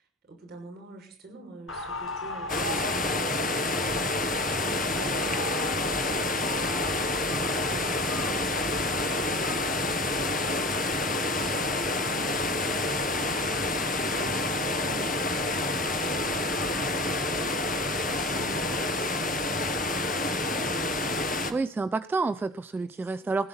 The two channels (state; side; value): normal; both; correlation 0.36